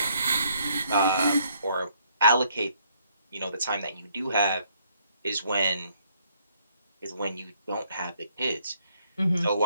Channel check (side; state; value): both; inverted; correlation -0.68